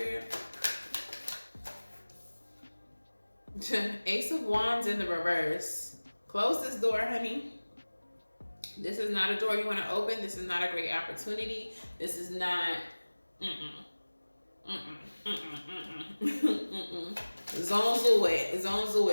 Ace of Wands in the reverse. Close this door, honey. This is not a door you want to open. This is not a great opportunity. This is not. Zonzo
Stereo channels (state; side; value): inverted; both; correlation -1.00